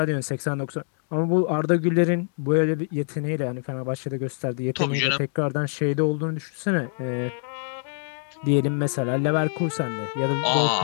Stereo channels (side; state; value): right; silent; digital silence